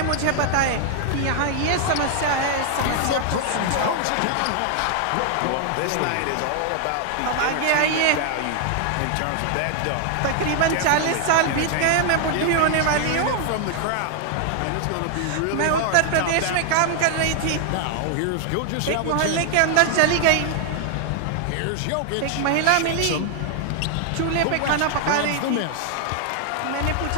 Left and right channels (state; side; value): different; both; correlation 0.00